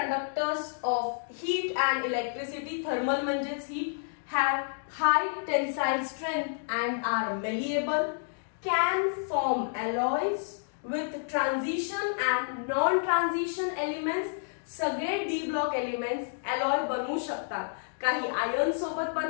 of heat and electricity. Thermal म्हणजेच heat. Have high tensile strength and are malleable. Can form alloys with transition and non-transition elements. सगळे D block elements alloy बनवू शकतात. काही iron सोबत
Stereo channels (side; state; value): right; silent; digital silence